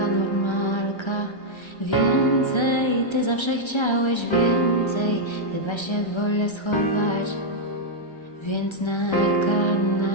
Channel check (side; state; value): right; late; 1.3 ms